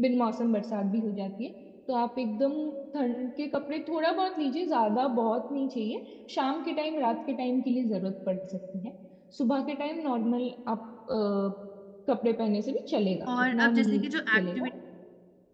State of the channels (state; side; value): identical; both; correlation 1.00